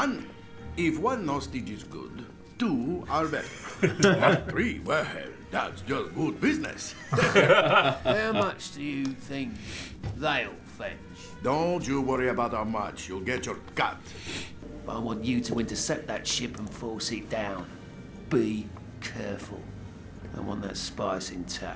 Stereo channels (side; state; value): both; identical; correlation 1.00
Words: if one hostage is good, two are better. Not three, well, that's just good business. How much do you think they'll fetch? Don't you worry about how much, you'll get your cut. I want you to intercept that ship and force it down. Be careful. I want that spice